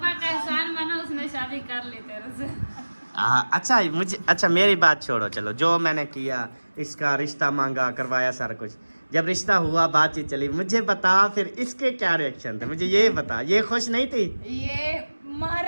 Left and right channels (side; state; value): both; inverted; correlation -1.00